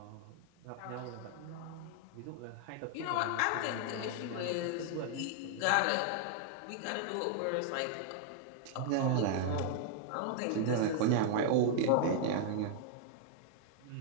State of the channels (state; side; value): different; both; correlation 0.00